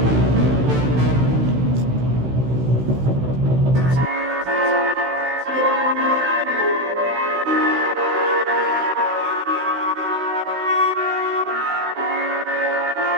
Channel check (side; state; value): left; late; 16 ms